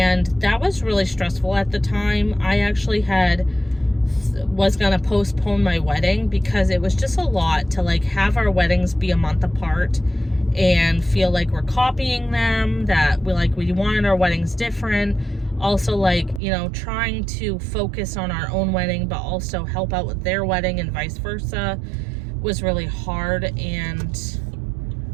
that was really stressful at the time. I actually was gonna postpone my wedding because it was just a lot to like have our weddings be a month apart and feel like we're copying them, that we wanted our weddings different. Also, like, you know, trying to focus on our own wedding but also help out with their wedding and vice versa was really hard. And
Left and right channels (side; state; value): left; drops out; at 16.4 s